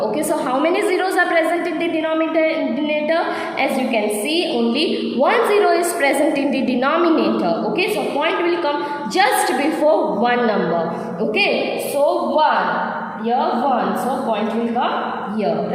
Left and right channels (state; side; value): identical; both; correlation 1.00